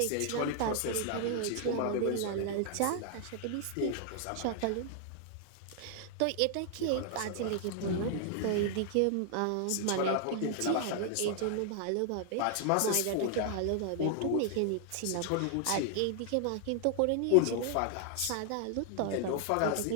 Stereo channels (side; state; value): both; different; correlation 0.00